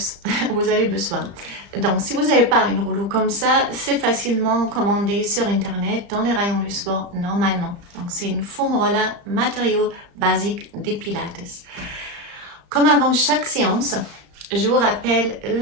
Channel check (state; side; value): late; left; 35 ms